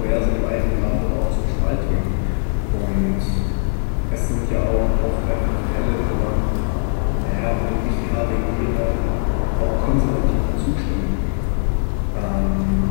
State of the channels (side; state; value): right; silent; digital silence